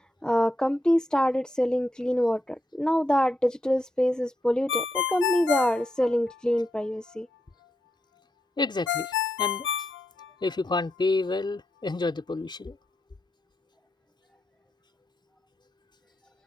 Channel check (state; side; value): normal; both; correlation 0.84